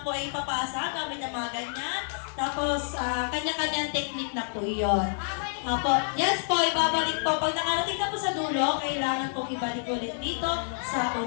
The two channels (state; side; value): silent; right; digital silence